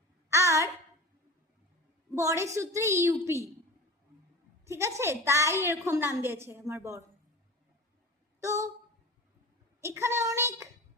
আর বরের সূত্রে ইউপি, ঠিক আছে? তাই এরকম নাম দিয়েছে আমার বর। তো এখানে অনেক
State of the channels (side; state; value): both; normal; correlation 0.33